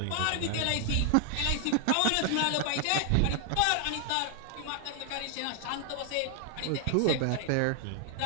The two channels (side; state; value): both; different; correlation 0.00